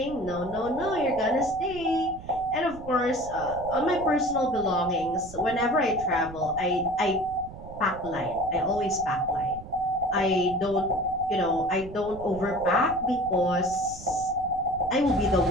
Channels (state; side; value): noise; right; rumble, 15 dB below the sound